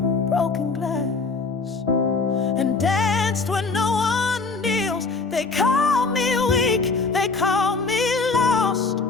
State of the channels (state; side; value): quieter; right; 4.1 dB